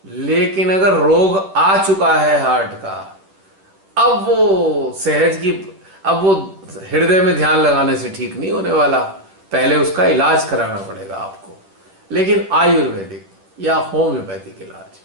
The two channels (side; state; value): left; late; 10 ms